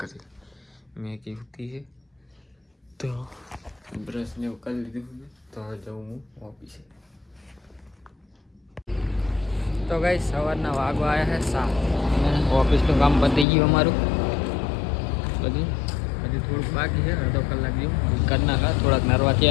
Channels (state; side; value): drops out; right; at 13.5 s